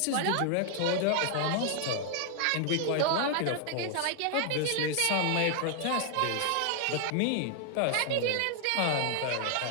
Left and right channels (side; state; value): both; different; correlation 0.00